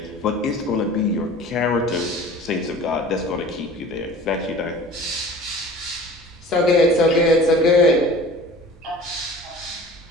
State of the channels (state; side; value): normal; both; correlation 0.43